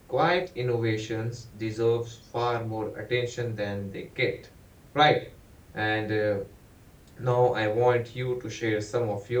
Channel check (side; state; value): both; identical; correlation 1.00